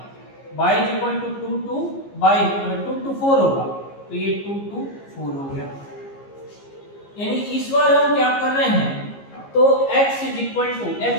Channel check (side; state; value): right; late; 15 ms